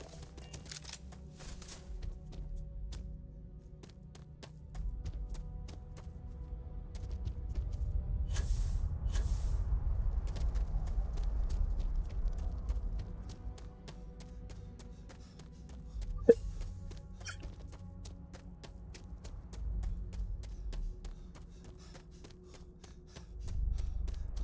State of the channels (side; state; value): both; identical; correlation 1.00